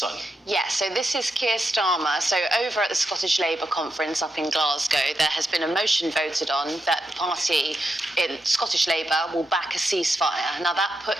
Yeah, so this is Keir Starmer. So over at the Scottish Labour conference up in Glasgow, there has been a motion voted on that the party in Scottish Labour will back a ceasefire. Now that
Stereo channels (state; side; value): normal; both; correlation 0.86